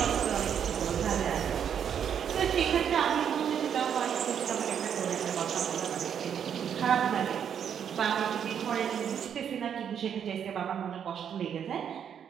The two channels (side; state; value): left; quieter; 8.3 dB